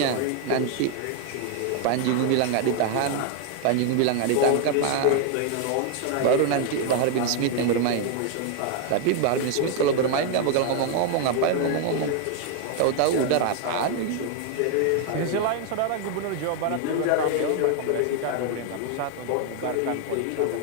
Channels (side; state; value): both; different; correlation 0.01